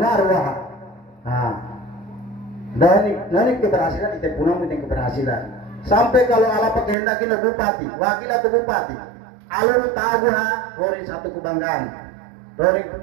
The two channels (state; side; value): drops out; left; at 7.0 s